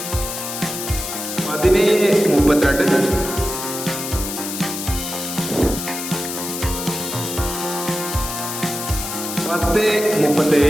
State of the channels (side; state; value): left; noise; hiss, 6 dB below the sound